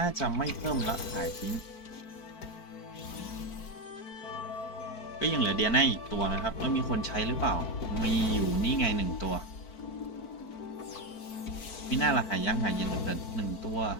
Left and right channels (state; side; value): late; right; 4.5 ms